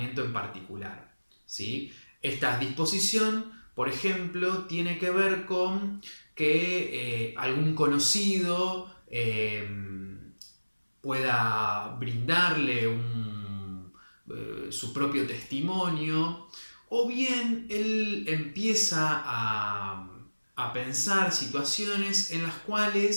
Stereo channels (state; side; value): inverted; both; correlation -1.00